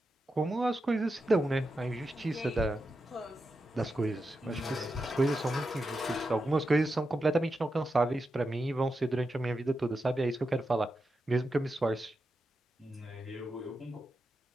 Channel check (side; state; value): both; normal; correlation 0.88